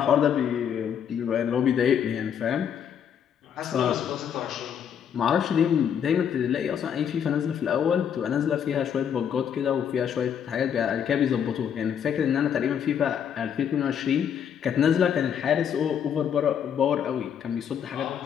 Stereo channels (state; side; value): quieter; right; 8.4 dB